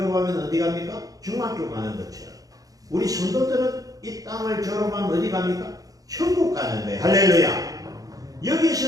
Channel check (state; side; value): late; left; 0.17 ms